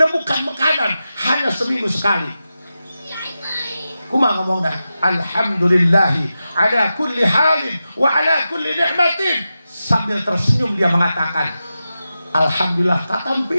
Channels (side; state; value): both; inverted; correlation -0.92